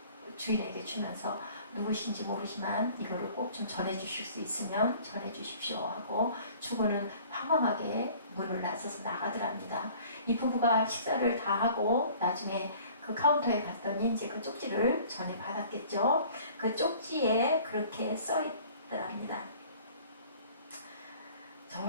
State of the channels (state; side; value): inverted; both; correlation -0.50